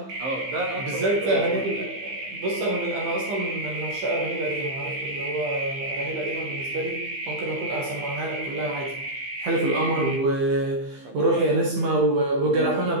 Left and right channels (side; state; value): left; late; 15 ms